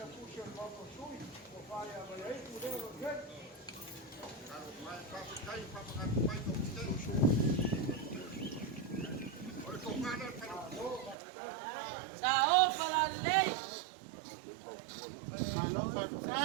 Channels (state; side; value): drops out; left; at 11.2 s